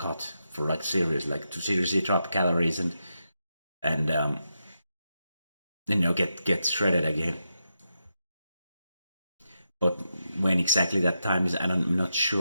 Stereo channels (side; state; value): both; inverted; correlation -0.86